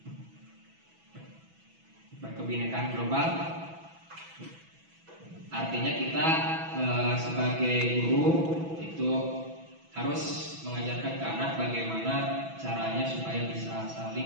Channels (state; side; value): late; left; 6.1 ms